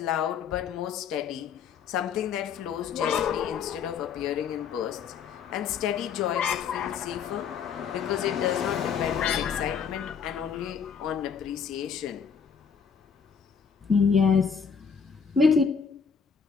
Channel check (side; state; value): right; quieter; 6.6 dB